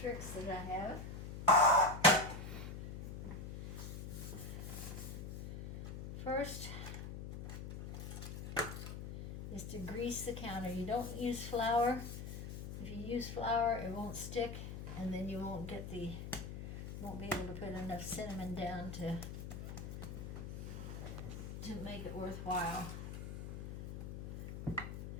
that I have. First is to grease the counter. You don't use flour. If you use flour, it won't stick, and then you won't get won't be able to put enough cinnamon down to make it worthwhile.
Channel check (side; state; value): left; noise; hum, 7 dB below the sound